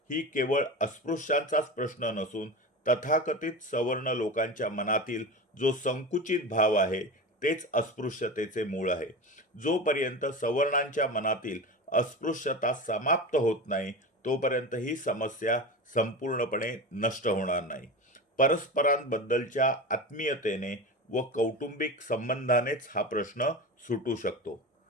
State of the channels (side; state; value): both; normal; correlation 0.27